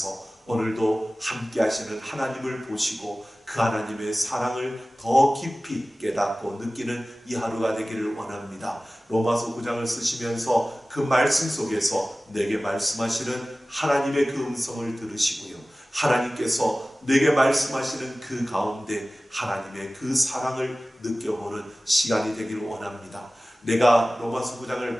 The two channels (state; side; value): normal; both; correlation 0.97